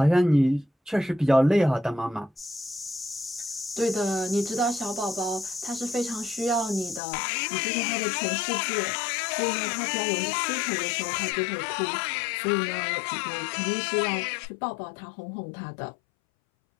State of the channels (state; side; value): drops out; right; at 7.0 s